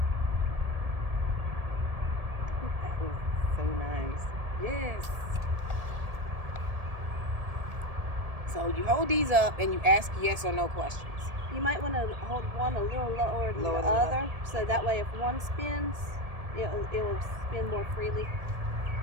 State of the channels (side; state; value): left; late; 1.7 ms